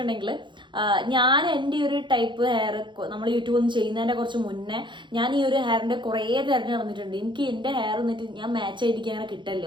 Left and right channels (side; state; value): left; late; 0.23 ms